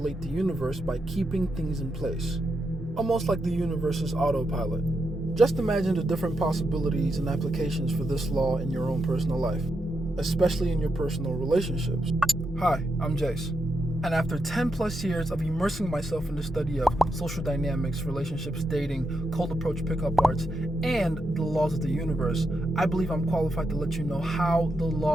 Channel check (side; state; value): both; normal; correlation 0.84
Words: the universe by keeping things in place, almost like the universe's autopilot. Just imagine the different possibilities and applications for this law in your own personal life, especially in your personal relationships. Hi, I'm Jace. And after 10 plus years of immersing myself in the study of social dynamics, relationships, dating, cold approach pickup arts, and the laws of the universe, I believe I'm qualified to let you know how the